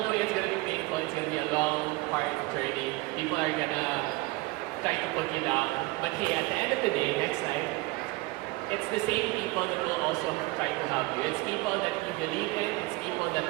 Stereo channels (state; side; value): quieter; left; 22.3 dB